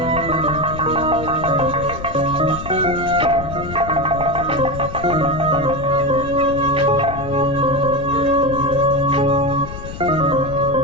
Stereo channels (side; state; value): left; noise; rumble, 11 dB below the sound